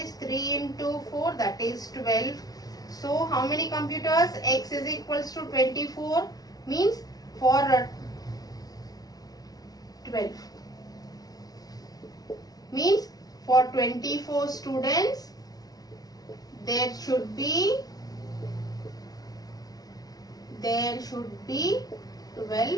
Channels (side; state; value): right; late; 0.18 ms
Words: 3 into 4, that is 12. So how many computers? X is equals to 24, means for 12. Means for 24 students, there should be